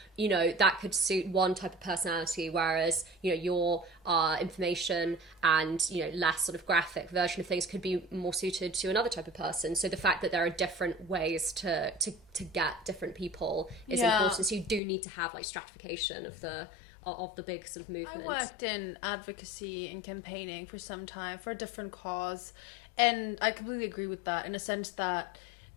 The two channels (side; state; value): right; drops out; at 14.8 s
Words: You know, that could suit one type of personality, whereas, you know, your information and, you know, less sort of graphic version of things could be more suited to another type of person. So the fact that there are different ways to get different people is important. So you do need to have like stratification of the big sort of movement. I worked in advocacy and campaigning for some time for a different cause, and I completely agree with that, in a sense that